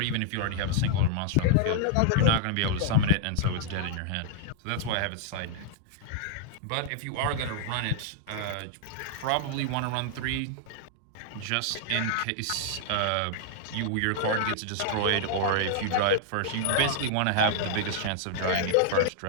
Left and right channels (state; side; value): different; both; correlation -0.01